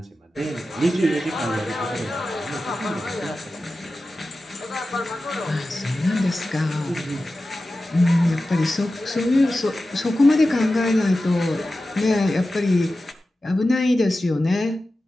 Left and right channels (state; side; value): normal; both; correlation 0.94